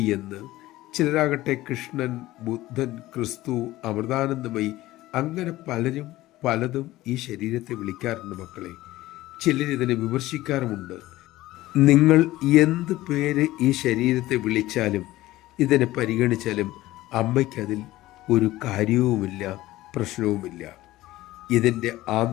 എന്ന്, ചിലരാകട്ടെ കൃഷ്ണൻ, ബുദ്ധൻ, ക്രിസ്തു, അമൃതാനന്ദമയി, അങ്ങനെ പലരും പലതും ഈ ശരീരത്തെ വിളിക്കാറുണ്ട് മക്കളെ. ചിലരിതിനെ വിമർശിക്കാറുമുണ്ട്. നിങ്ങൾ എന്ത് പേര് ഈ ശരീരത്തെ വിളിച്ചാലും ഇതിനെ പരിഗണിച്ചാലും അമ്മയ്ക്കതിൽ ഒരു കാര്യവുമില്ല, പ്രശ്നവുമില്ല. ഇതിൻ്റെ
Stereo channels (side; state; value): right; quieter; 16.8 dB